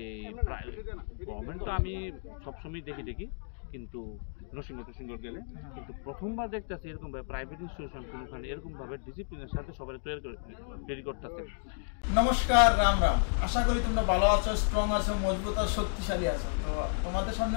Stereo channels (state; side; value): silent; right; digital silence